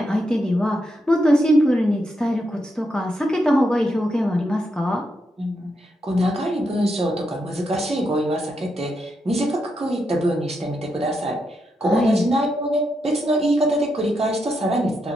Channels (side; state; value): both; normal; correlation 0.82